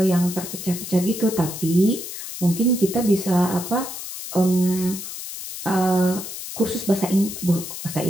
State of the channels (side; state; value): left; noise; hiss, 9 dB below the sound